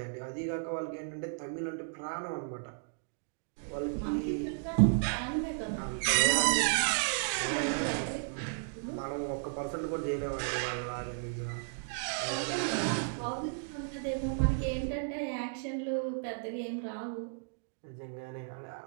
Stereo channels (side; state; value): left; silent; digital silence